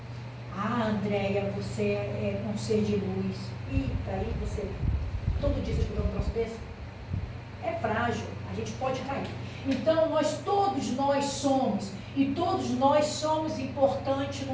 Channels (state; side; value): identical; both; correlation 1.00